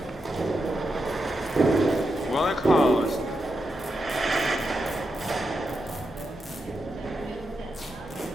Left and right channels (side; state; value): both; normal; correlation 0.86